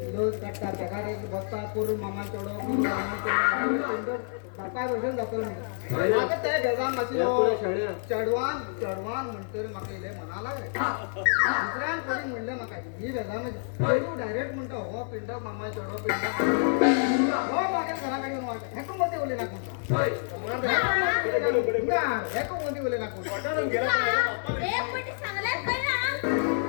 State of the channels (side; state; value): right; silent; digital silence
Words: रोज काढता पगार बसता करून मामा चढव बापा बसून जातो आता त्या घेजान मातशी चढवान चढवान म्हणतो रे म्हाका इले म्हणा लागले दुसऱ्यान कोणी म्हणले म्हाका ही बेजान तू डायरेक्ट म्हणतो हो पिंड मामा चढव पिंड हो मागे घराकडे येऊन वाटत हेको मध्ये बोले ना कोणता हेको मध्ये बोले ना कोणता